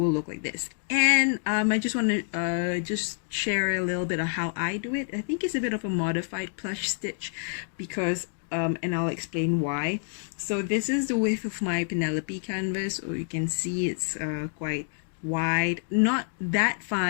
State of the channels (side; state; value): right; silent; 60 dB below the other